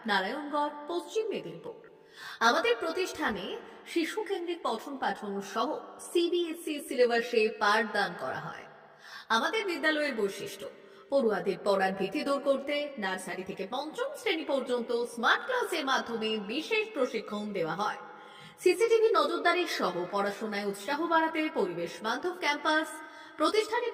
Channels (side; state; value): both; identical; correlation 1.00